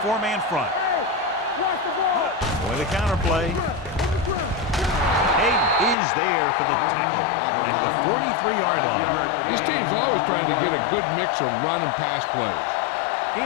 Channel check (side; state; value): right; drops out; at 6.0 s